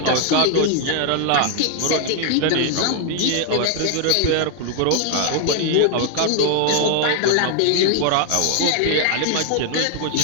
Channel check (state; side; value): different; both; correlation 0.00